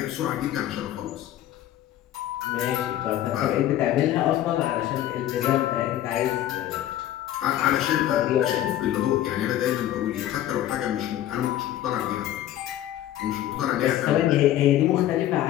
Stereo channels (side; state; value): right; quieter; 12.8 dB